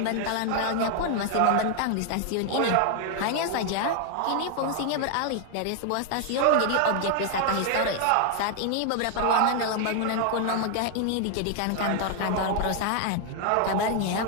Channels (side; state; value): both; different; correlation 0.00